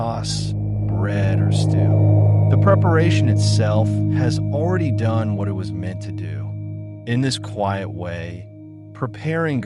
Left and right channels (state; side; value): identical; both; correlation 1.00